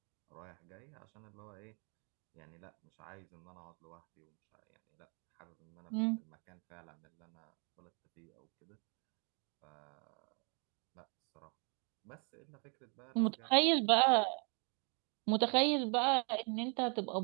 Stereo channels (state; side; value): quieter; left; 37.8 dB